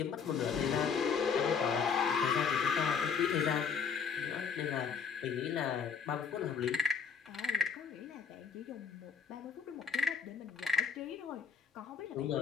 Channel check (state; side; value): quieter; right; 6.3 dB